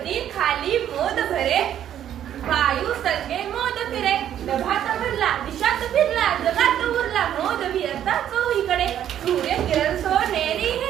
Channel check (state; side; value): quieter; left; 10.6 dB